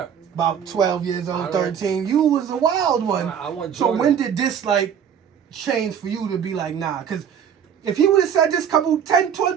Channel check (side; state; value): left; quieter; 8.2 dB